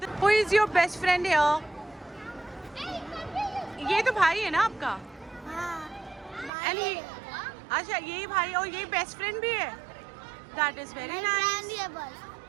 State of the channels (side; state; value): left; drops out; at 6.5 s